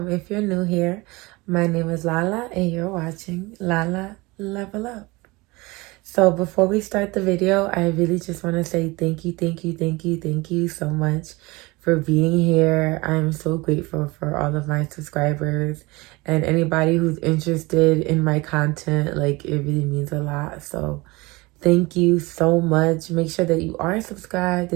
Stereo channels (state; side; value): quieter; left; 23.3 dB